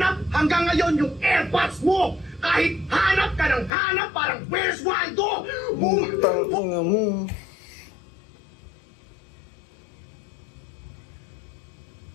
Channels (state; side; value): drops out; right; at 3.7 s